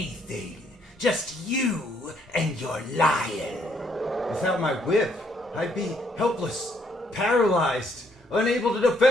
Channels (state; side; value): normal; both; correlation 0.70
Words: Just you and your lion. Without my whip, I'd be helpless, paralyzed, unable to